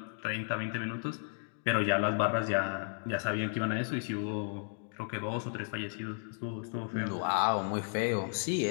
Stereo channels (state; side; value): silent; right; 55 dB below the other